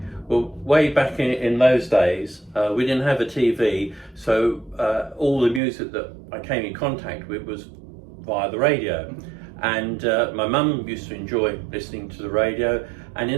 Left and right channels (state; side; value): drops out; left; at 5.6 s